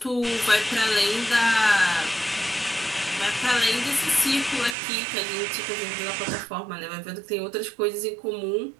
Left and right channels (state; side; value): drops out; left; at 4.8 s